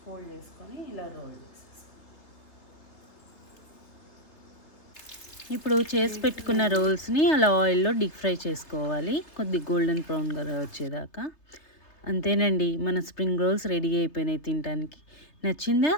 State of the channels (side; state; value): right; late; 3.3 ms